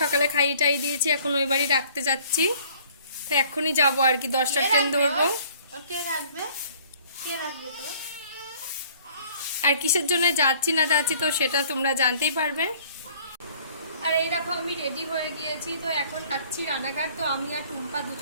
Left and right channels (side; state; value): both; inverted; correlation -0.55